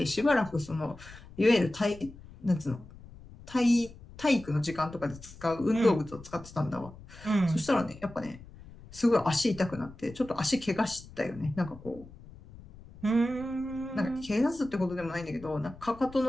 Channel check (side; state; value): left; noise; rumble, 19 dB below the sound